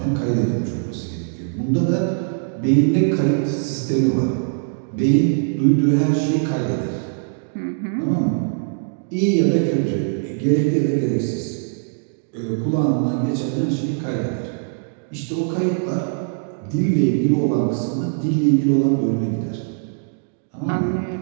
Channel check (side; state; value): left; silent; digital silence